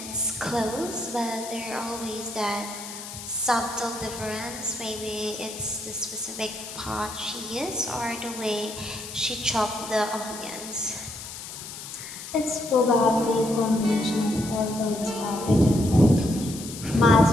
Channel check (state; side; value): noise; left; hiss, 11 dB below the sound